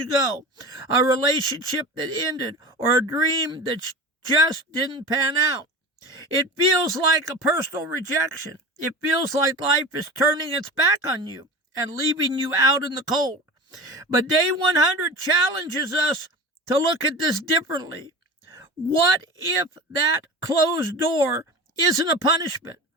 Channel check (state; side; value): normal; both; correlation 0.33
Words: go, a relationship that ended, or a dream that just didn't pan out. It feels like a personal rejection. It feels like life is turning its back on you and leaving you out in the cold. But Day 100 challenges us to look at this differently. What if that closed door isn't a punishment?